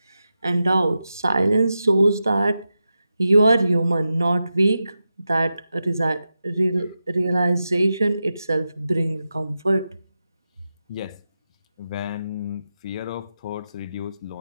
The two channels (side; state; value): both; inverted; correlation -0.90